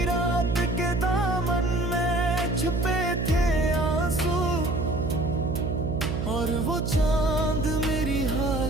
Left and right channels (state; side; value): noise; right; hum, 2 dB below the sound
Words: रात के दामन में छुपे थे आंसू, और वो चांद मेरी